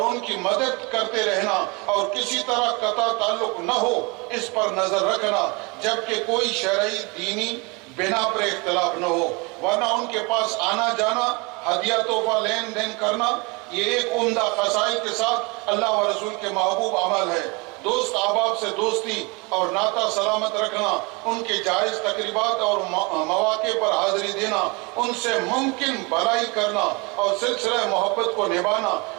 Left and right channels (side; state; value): left; quieter; 28.3 dB